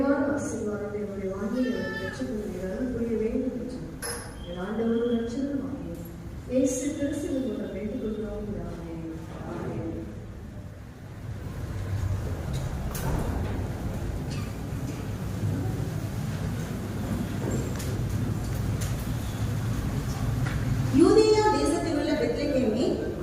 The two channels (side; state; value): both; identical; correlation 1.00